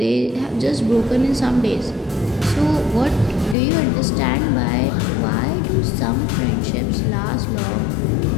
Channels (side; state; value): right; drops out; at 3.6 s